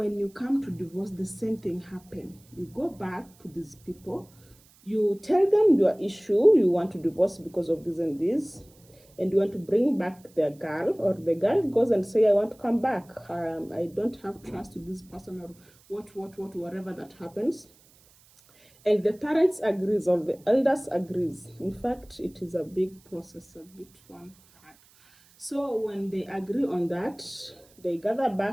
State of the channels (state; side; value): noise; right; hiss, 29 dB below the sound